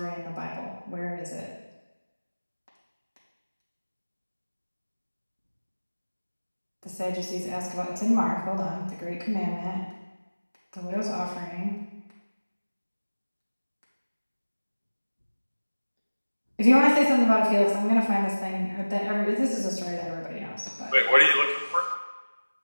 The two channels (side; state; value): both; inverted; correlation -1.00